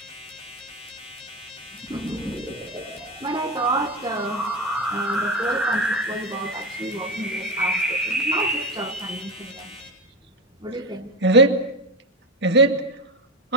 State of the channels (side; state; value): both; normal; correlation 0.17